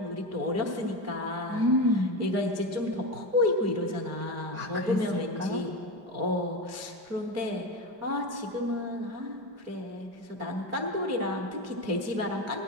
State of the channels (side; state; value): left; late; 4.5 ms